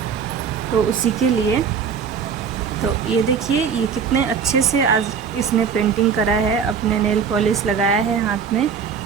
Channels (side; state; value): left; quieter; 6.6 dB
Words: तो उसी के लिए। तो ये देखिए ये कितने अच्छे से आज इसने पेंटिंग करा है, अपने नेल पॉलिश लगाया है हाथ में,